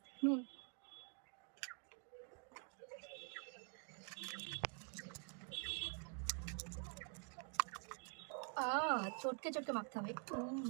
নুন, চটকে চটকে মাখতে হবে,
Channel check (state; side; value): quieter; left; 38.5 dB